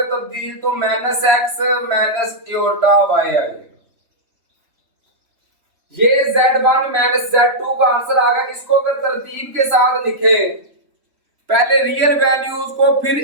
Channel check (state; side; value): late; left; 3.4 ms